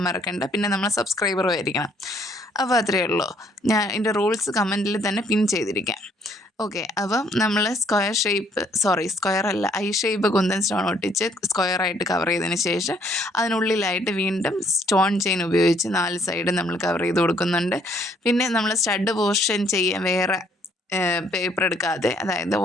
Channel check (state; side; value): normal; both; correlation 0.65